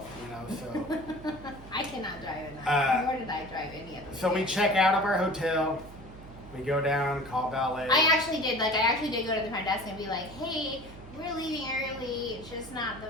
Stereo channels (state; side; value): noise; right; hum, 17 dB below the sound